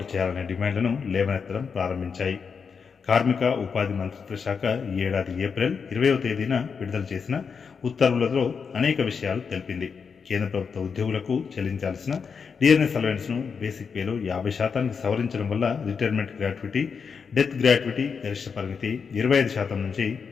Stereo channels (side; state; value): right; quieter; 5.9 dB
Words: చేయాలనే డిమాండ్లను లేవనెత్తడం ప్రారంభించాయి. కార్మిక ఉపాధి మంత్రిత్వ శాఖ ఈ ఏడాది ఏప్రిల్ 20వ తేదీన విడుదల చేసిన ఉత్తర్వులలో అనేక విషయాలు తెలిపింది. కేంద్ర ప్రభుత్వ ఉద్యోగులకు చెల్లించాల్సిన డిఆర్ఎస్ అలవెన్స్ను బేసిక్ పేలో 50%కి సవరించడం వల్ల రిటైర్మెంట్ గ్రాట్యుటీ, డెత్ గ్రాట్యుటీ గరిష్ట పరిమితి 25% నుంచి